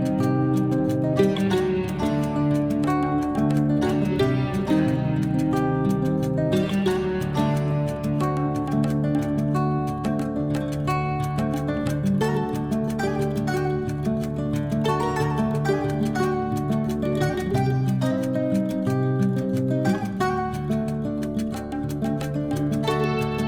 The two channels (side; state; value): both; identical; correlation 1.00